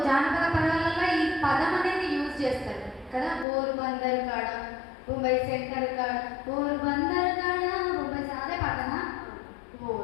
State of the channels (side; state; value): right; drops out; at 3.5 s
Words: జానపద పదాలలో ఈ పదం అనేది యూజ్ చేస్తారు కదా. పోరుబందర్ కాడ, ముంబై సెంటర్ కాడ, పోరుబందర్ కాడ, ముంబై అదే పాటనా? ఓ